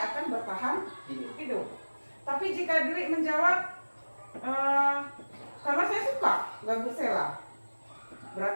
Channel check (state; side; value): inverted; both; correlation -1.00